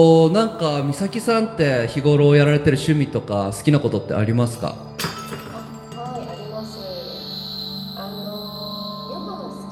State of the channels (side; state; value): both; identical; correlation 1.00